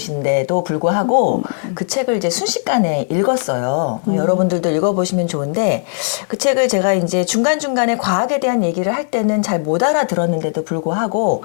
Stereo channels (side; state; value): right; silent; 61 dB below the other